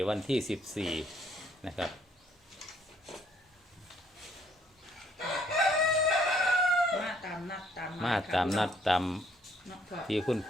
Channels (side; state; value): both; normal; correlation 0.66